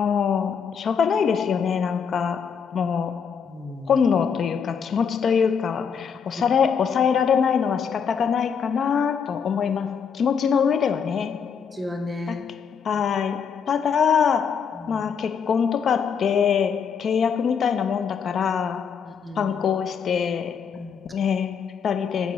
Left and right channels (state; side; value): quieter; right; 6.7 dB